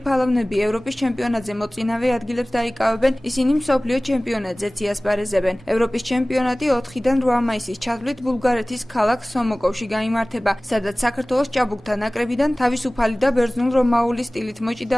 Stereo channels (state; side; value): normal; both; correlation 0.98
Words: ფალავნები ევროპის ჩემპიონატზე მოწინავე ადგილებს დაიკავებენ, ისინი მსოფლიო ჩემპიონატზეც იასპარეზებენ. ევროპის ჩემპიონატი 4-დან 8 მაისის ჩათვლით ბულგარეთის ქალაქ სომოკოვში გაიმართება, სადაც საქართველოს ჭაბუკთა ნაკრებიდან თავისუფალი და ბერძნულ-რომაული სტილით